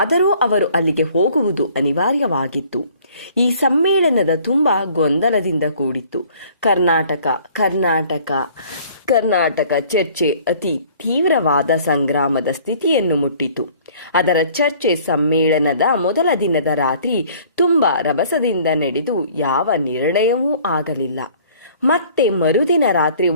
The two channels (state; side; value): inverted; both; correlation -0.54